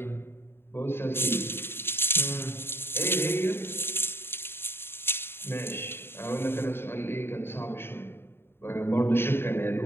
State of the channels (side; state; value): right; late; 0.11 ms